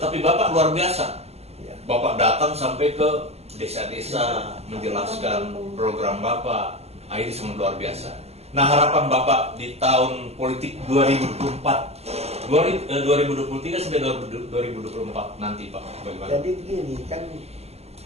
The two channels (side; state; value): left; late; 0.30 ms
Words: Bapak luar biasa. Ya. Bapak datang sampai ke desa-desa menjelaskan program Bapak. Ini sangat luar biasa. Nah, harapan Bapak di tahun politik 2023 sampai 2024 nanti, Pak, bagaimana? Jadi begini, kan